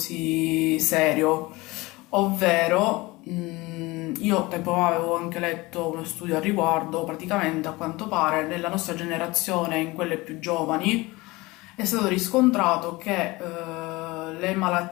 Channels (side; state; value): right; quieter; 21.9 dB